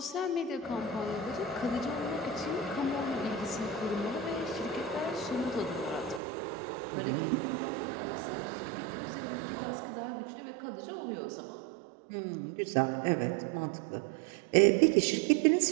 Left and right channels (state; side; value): drops out; left; at 6.2 s